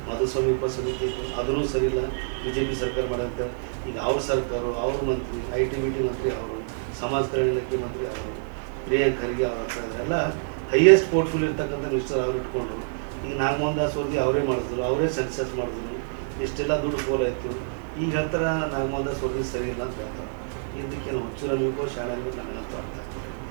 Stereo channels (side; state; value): left; silent; digital silence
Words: ಮಧುಸ್ವಾಮಿ ಉಪಸಮಿತಿ ಇತ್ತು, ಅದೂ ಸರಿ ಇಲ್ಲ, BJP ಸರ್ಕಾರ ಮಾಡೋಂತ. ಈಗ ಅವ್ರ ಸರ್ಕಾರ, ಅವ್ರ ಮಂತ್ರಿ, IT-BT ಮಂತ್ರಿ ಅವರು, ಸಮಾಜ ಕಲ್ಯಾಣ ಇಲಾಖೆ ಮಂತ್ರಿ ಅವರು, ಪ್ರಿಯಾಂಕ್ ಖರ್ಗೆ ಅವ್ರ ಎಲ್ಲ ಹೈಯೆಸ್ಟ್ ಪೋರ್ಟ್ಫೋಲಿಯೋ ಇರ್ತಕ್ಕಂಥ ಮಿನಿಸ್ಟರ್ ಅವ್ರು ಇಟ್ಕೊಂಡು ಈಗ ನಾಗಮೋಹನ್ ದಾಸ್ ವರದಿ ಅವರೇ ಮಾಡಿದ್ರು, ಅವರೇ ಸೆನ್ಸಸ್ ಮಾಡಿದ್ರು, ಇಷ್ಟೆಲ್ಲ ದುಡ್ಡು ಫೋಲ್ ಆಯಿತು. ಈಗ ಹೇಳ್ತಾರೆ ನಾಗಮೋಹನ್ ದಾಸ್ ವರದಿ ಸರಿ ಇಲ್ಲ ಅಂತ ಹೇಳ್ತಾರೆ. ಇದಕ್ಕೇನು ಹುಚ್ಚು ನಮಗೂ ಶಾಣೆ ನನಗಂತೂ ಅರ್ಥ ಆಗ್ತದೆ.